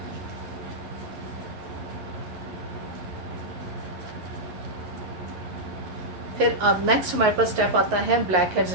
फिर अब नेक्स्ट हमारे पास स्टेप आता है ब्लैक हेड्स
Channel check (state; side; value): late; left; 11 ms